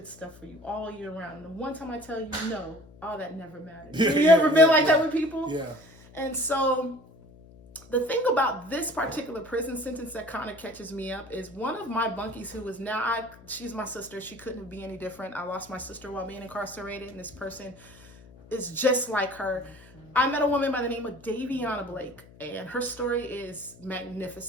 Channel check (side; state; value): left; noise; hum, 22 dB below the sound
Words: stuff for you all year round. And the one time I tell you no, all that never matters. Have you ever been like that with people? Yeah. And so the thing about this particular prison sentence that kind of catches me up is one of my bunkies, who is now, she's my sister. She couldn't be any different. I lost my sister while being incarcerated, and this person is just like her. I met a woman by the name of Daviana Blake, and her story is